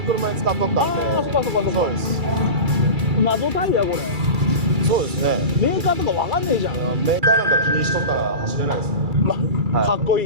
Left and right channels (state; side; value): late; left; 2.3 ms